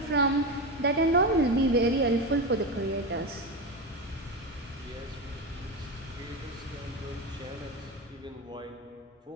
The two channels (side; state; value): both; normal; correlation 0.18